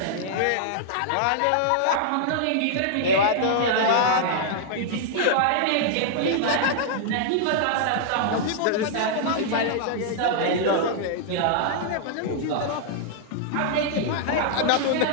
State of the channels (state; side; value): different; both; correlation -0.01